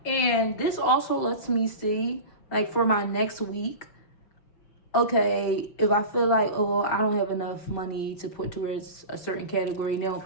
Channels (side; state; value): right; late; 5.9 ms